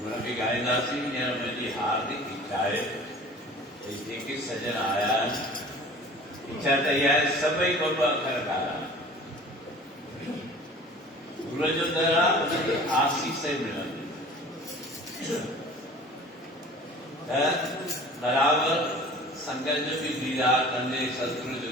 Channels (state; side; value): normal; both; correlation 0.44